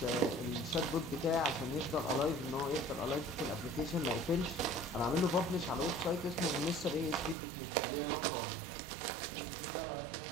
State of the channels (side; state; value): left; drops out; at 7.4 s